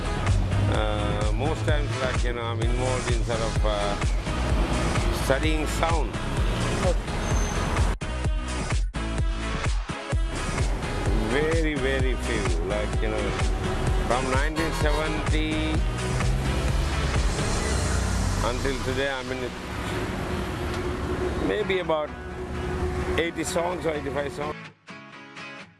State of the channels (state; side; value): identical; both; correlation 1.00